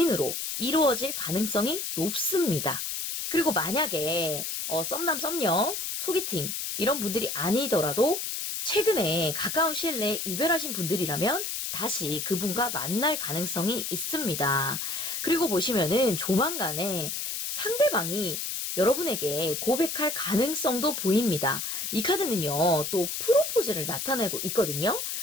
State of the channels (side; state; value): left; noise; hiss, 3 dB below the sound